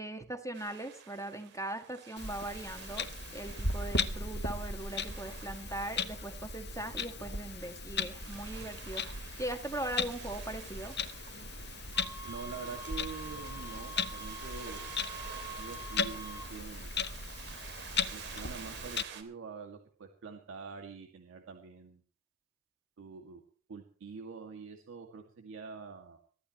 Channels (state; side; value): normal; both; correlation 0.36